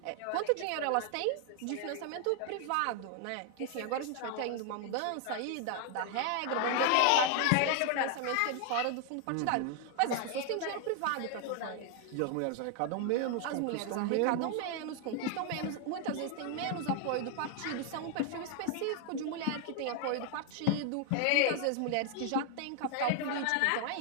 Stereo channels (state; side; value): different; both; correlation 0.00